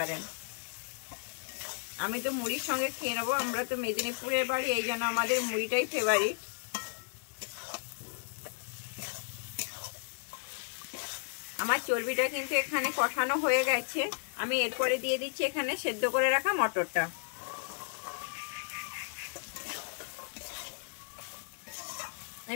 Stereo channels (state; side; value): silent; right; digital silence